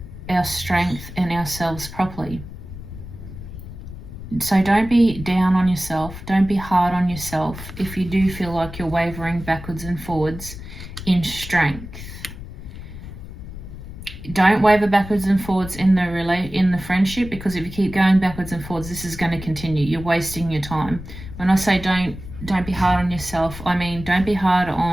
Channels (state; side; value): noise; left; rumble, 12 dB below the sound